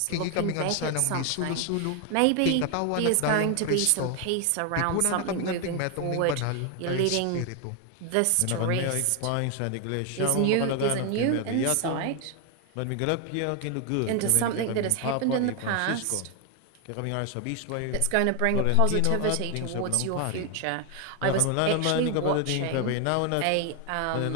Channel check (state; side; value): different; both; correlation 0.01